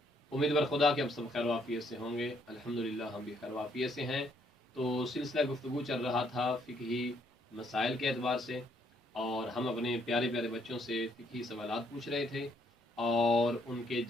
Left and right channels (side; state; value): both; normal; correlation 0.69